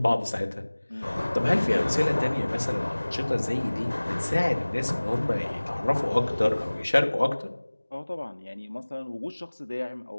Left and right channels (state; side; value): inverted; both; correlation -1.00